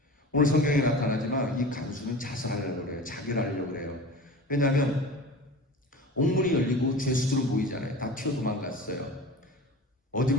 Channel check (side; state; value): both; normal; correlation 0.35